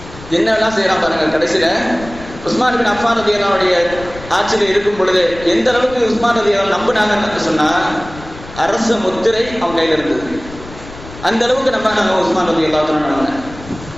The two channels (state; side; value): noise; left; rumble, 16 dB below the sound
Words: என்னெல்லாம் செய்யறான் பாருங்க. கடைசியில உஸ்மான் இப்னு அஃபான் ரலியல்லாஹு அன்ஹுடைய ஆட்சியில் இருக்கும் பொழுது எந்த அளவுக்கு உஸ்மான் ரலியல்லாஹு நம்பினாங்கன்னு சொன்னா, அரச முத்திரை அவன் கையில் இருந்தது. அந்த அளவுக்கு நம்பினாங்க உஸ்மான் ரலியல்லாஹு அன்ஹு.